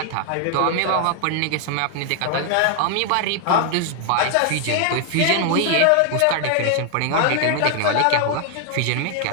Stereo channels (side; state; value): both; different; correlation 0.00